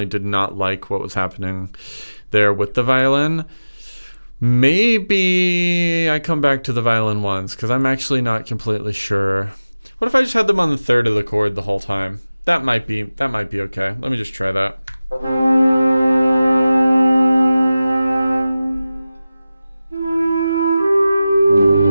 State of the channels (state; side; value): inverted; both; correlation -0.96